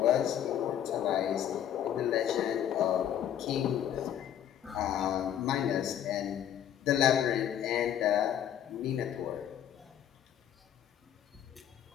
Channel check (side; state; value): right; quieter; 10.2 dB